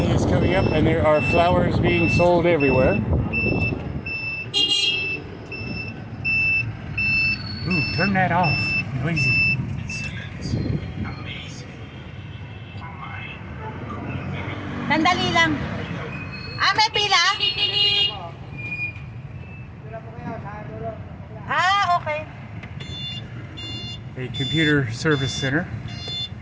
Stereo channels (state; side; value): identical; both; correlation 1.00